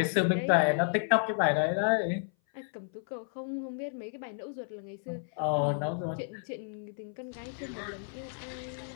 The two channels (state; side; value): silent; right; 57 dB below the other